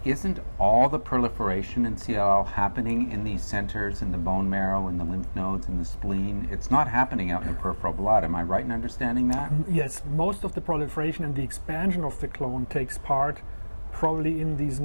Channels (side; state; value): both; inverted; correlation -1.00